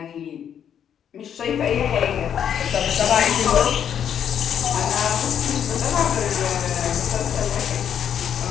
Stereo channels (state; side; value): quieter; right; 8.8 dB